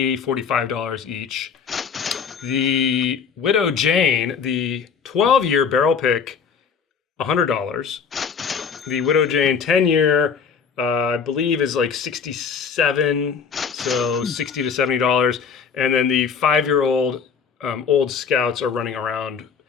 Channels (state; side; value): quieter; right; 6.3 dB